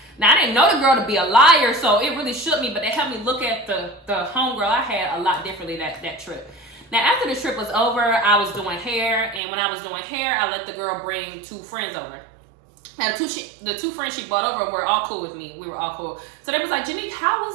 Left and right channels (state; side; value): drops out; left; at 9.4 s